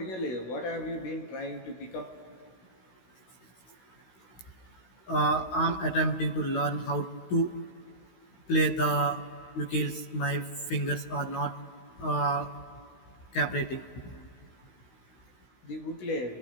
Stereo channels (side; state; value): right; late; 16 ms